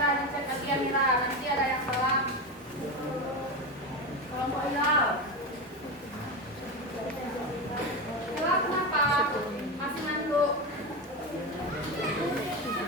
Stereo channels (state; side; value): normal; both; correlation 0.18